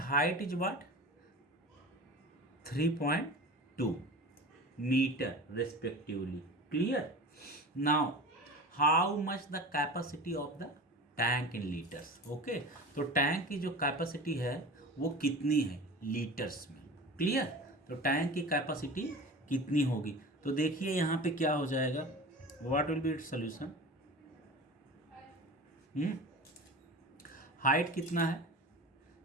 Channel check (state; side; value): normal; both; correlation 0.34